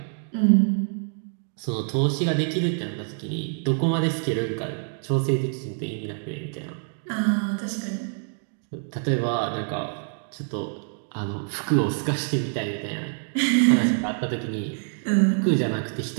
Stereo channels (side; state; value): left; silent; 61 dB below the other